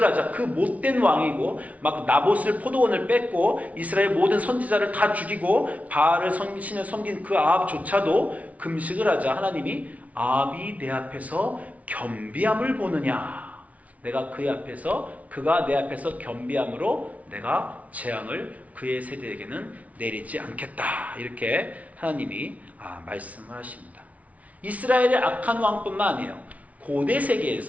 하자 그 못된 왕이고 막 나봇을 포도원을 뺏고 이스라엘 모든 선지자를 다 죽이고 바알을 신을 섬긴 그 아합조차도 금식을 하자 하나님이 아합이 내 앞에서 겸비함을 보느냐. 내가 그의 앞에서, 그가 내 앞에서 겸비함으로 내가 재앙을 그의 세대에게는 내리지 않겠다. 이렇게 하나님이 말씀을 하십니다. 이스라엘의 악한 왕뿐만 아니에요. 고대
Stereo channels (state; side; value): late; left; 0.068 ms